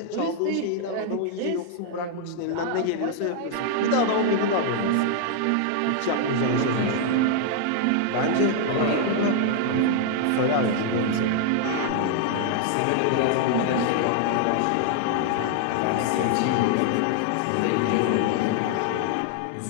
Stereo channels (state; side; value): different; both; correlation 0.00